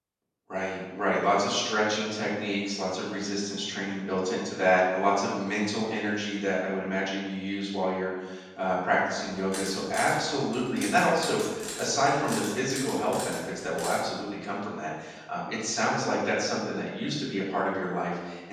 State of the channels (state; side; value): identical; both; correlation 1.00